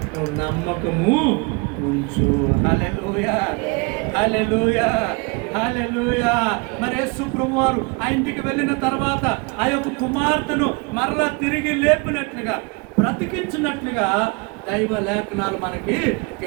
నువ్వు నమ్మకము ఉంచు. హల్లెలూయా, హల్లెలూయా, హల్లెలూయా. మరి యేసు ప్రభువు వారు ఆ ఇంటికి వెళ్ళిన తర్వాత ఆ యొక్క కుమార్తెను మరలా తిరిగి లేపినట్లుగా, బ్రతికించినట్లుగా దైవ లేఖనాలు మనకి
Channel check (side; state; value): left; quieter; 29.3 dB